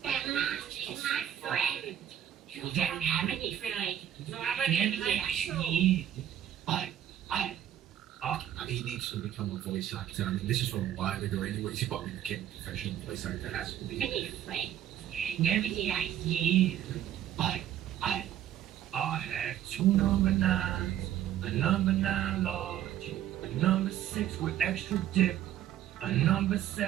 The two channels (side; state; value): left; quieter; 11.1 dB